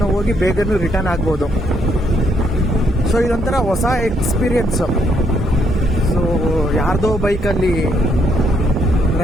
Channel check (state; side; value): normal; both; correlation 0.73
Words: ಹೋಗಿ ಬೇಗನೂ ರಿಟರ್ನ್ ಆಗ್ಬೋದು. ಸೊ ಇದೊಂಥರ ಹೊಸ ಎಕ್ಸ್ಪೀರಿಯನ್ಸು. ಸೊ ಯಾರ್ದೋ ಬೈಕಲ್ಲಿ